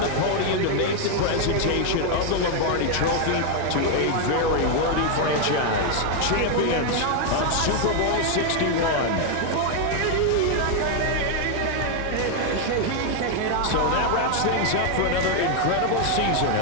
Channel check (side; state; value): both; different; correlation 0.00